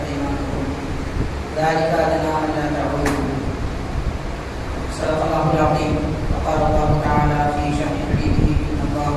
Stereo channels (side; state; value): both; identical; correlation 1.00